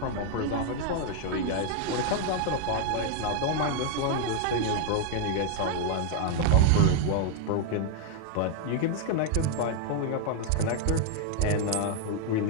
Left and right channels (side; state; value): both; different; correlation 0.00